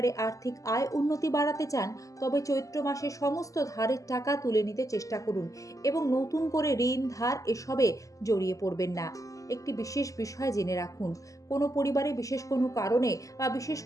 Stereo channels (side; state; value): right; late; 0.16 ms